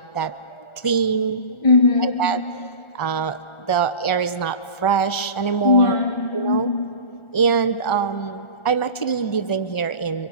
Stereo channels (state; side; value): late; right; 1.4 ms